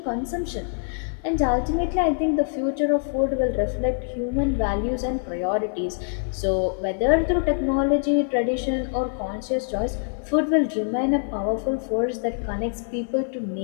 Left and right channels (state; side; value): silent; right; digital silence